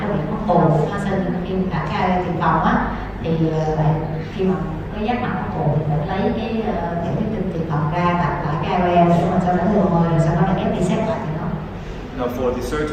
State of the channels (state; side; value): identical; both; correlation 1.00